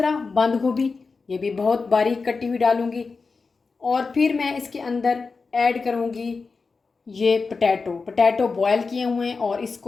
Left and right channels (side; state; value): right; quieter; 4.5 dB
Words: बंद गोभी, ये भी बहुत बारीक कटी हुई डालूँगी। और फिर मैं इसके अंदर ऐड करूँगी ये पोटैटो बॉयल किए हुए हैं, और